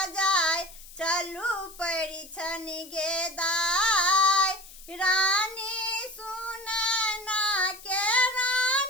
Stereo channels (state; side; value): noise; left; hiss, 18 dB below the sound